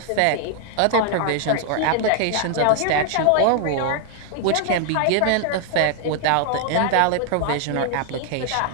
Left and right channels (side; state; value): both; different; correlation 0.00